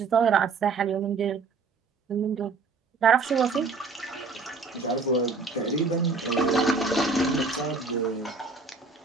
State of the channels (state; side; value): quieter; left; 4.2 dB